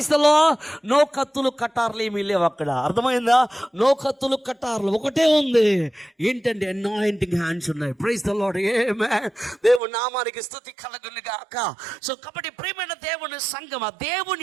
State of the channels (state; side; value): drops out; left; at 9.8 s